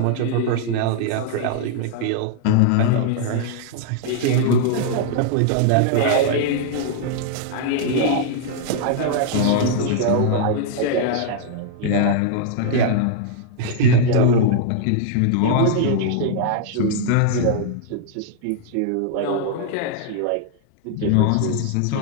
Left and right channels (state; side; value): different; both; correlation -0.01